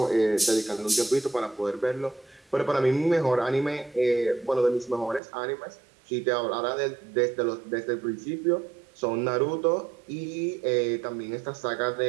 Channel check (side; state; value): left; drops out; at 5.2 s